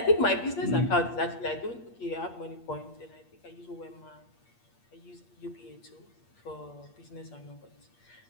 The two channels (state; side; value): late; right; 8.5 ms